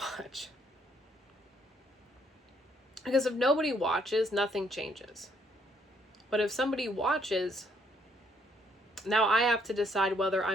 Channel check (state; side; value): normal; both; correlation 0.69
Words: Because if nobody watches, nothing changes. But if somebody watches, now I have to decide whether